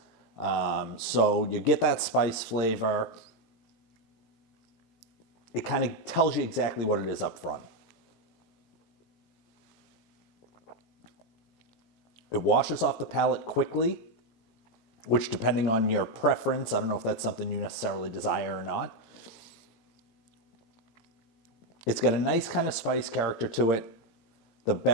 So you get that spice flavor. It kind of tells you exactly what it is up front. It washes off the palate quickly, which, depending on your preference, I don't know if that's something you necessarily desire or not. It's got a nice kind of spice character to it. The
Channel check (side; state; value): right; late; 18 ms